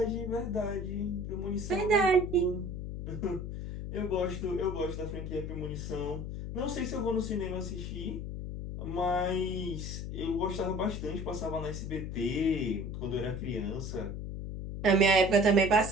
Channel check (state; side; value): noise; left; hum, 6 dB below the sound